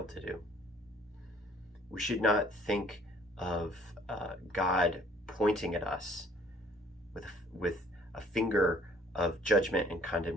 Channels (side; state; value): both; normal; correlation 0.58